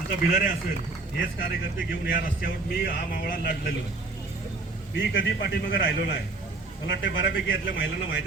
भिलारे असेल, हेच कार्यकर्ते घेऊन या रस्त्यावर मी हा मावळा लढलेलो. मी कधी पाठीमागे राहिलो नाही. मला वाटतं बऱ्यापैकी यातल्या महिलांना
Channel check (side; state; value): left; quieter; 3.5 dB